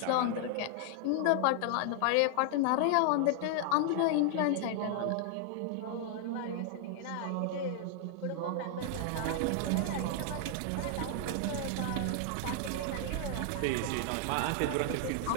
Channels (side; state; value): both; different; correlation 0.00